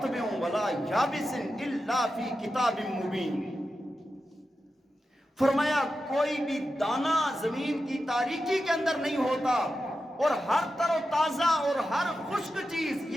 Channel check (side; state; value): both; normal; correlation 0.90